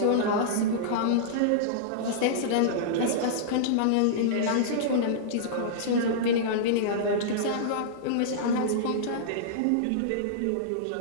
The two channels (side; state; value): both; different; correlation -0.02